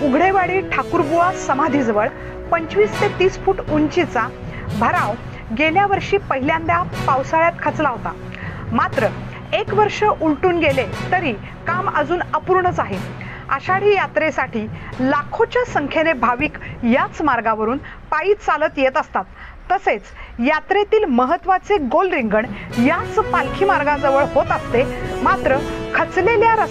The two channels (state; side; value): identical; both; correlation 1.00